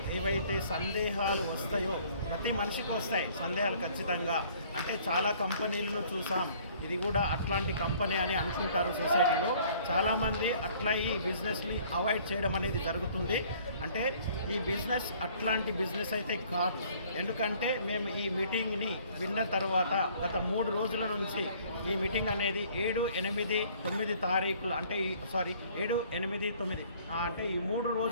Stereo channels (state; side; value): inverted; both; correlation -0.57